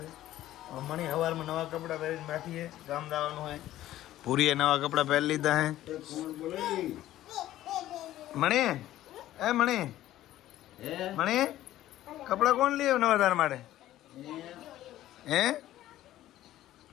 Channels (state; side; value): quieter; right; 14.0 dB